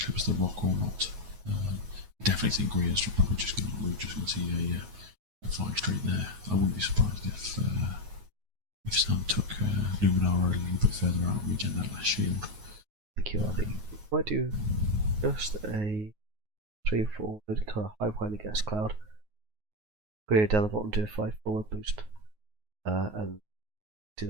clips the rock or not. I definitely think Greer's probably just going to see a flying straight there. I wouldn't be surprised if Sam took Luminara a little bit further out and regen that last shield. Thank you, I think. Might do just a 3-4 kind of high behind the gas cloud. Greer down the bottom, do a 5 forward boost, and do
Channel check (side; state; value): left; late; 9.5 ms